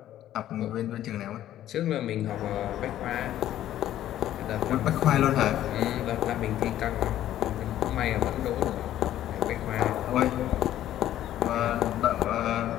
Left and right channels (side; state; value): right; quieter; 12.5 dB